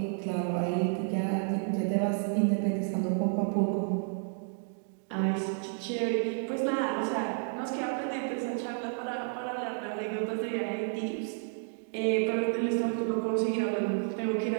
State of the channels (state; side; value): silent; left; 57 dB below the other